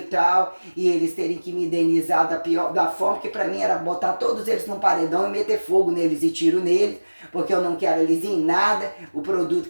tal, e eles terem que me indenizar da forma que para mim era botar todos eles num paredão e meter fogo neles e tiro neles, porque eu não quero eles em nada, o produto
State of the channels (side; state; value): both; inverted; correlation -1.00